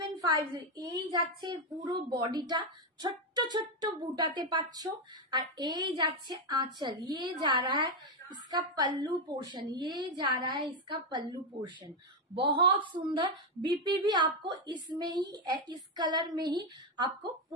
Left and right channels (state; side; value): normal; both; correlation 0.04